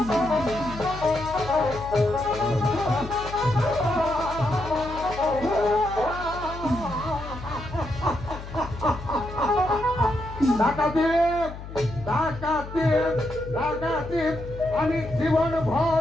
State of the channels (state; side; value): noise; left; hum, 11 dB below the sound